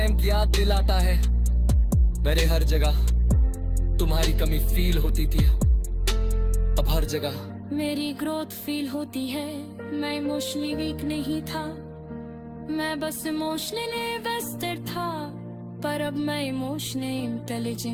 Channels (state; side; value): identical; both; correlation 1.00